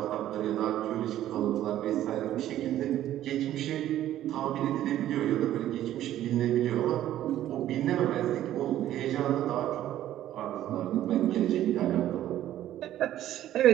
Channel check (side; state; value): left; quieter; 12.7 dB